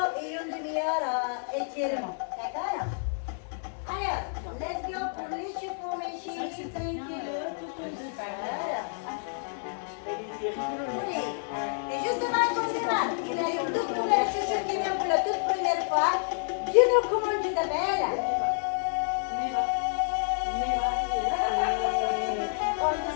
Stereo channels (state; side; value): silent; right; 58 dB below the other